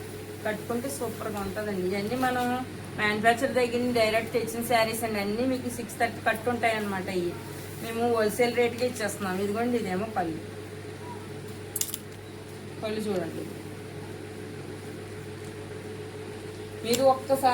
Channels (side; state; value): both; identical; correlation 1.00